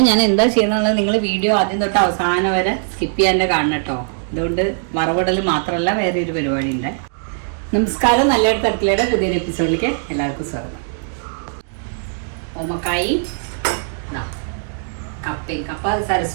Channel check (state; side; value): silent; left; digital silence